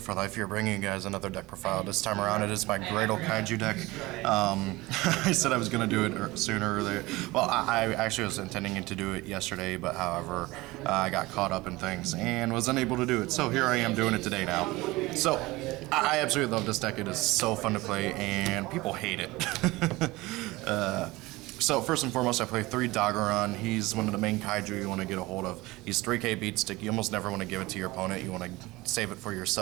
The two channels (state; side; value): quieter; left; 20.7 dB